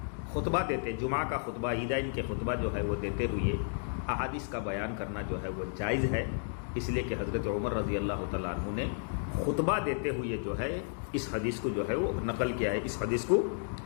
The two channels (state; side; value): silent; right; digital silence